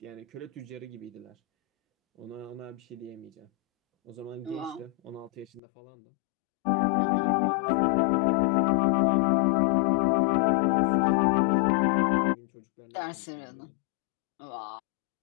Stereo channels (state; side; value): drops out; right; at 5.6 s